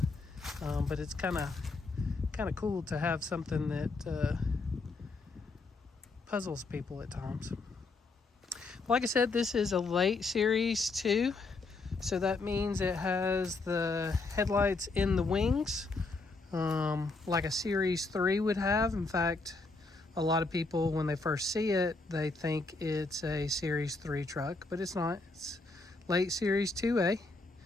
but it's kind of cool to have something that puzzles people at times. Like I said, this is a late Series 2, so that means it has the headlights in the wings, like a Series 3 would have. In fact, a lot of people, when they first see it, they think it's a Series 3 truck, but it's not. It's late Series 2A.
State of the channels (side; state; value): right; quieter; 3.6 dB